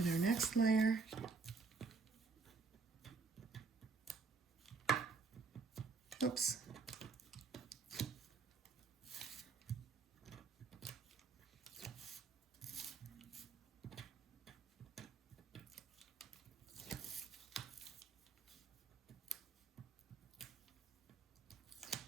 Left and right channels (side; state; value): left; quieter; 4.6 dB